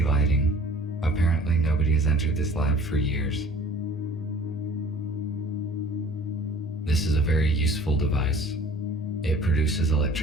lighting. Apparently nobody has entered this lab for years. This is a very useful device. It produces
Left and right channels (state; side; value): normal; both; correlation 0.49